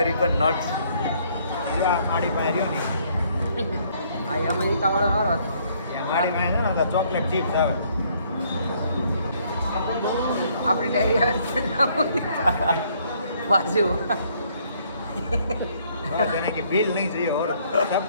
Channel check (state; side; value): inverted; both; correlation -0.65